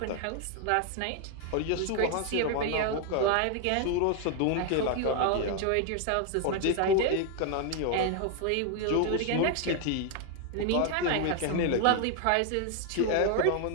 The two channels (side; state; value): both; different; correlation 0.00